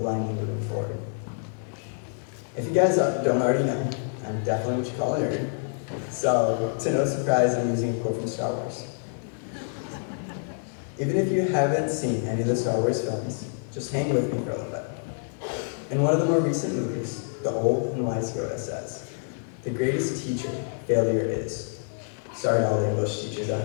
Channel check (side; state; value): right; silent; 60 dB below the other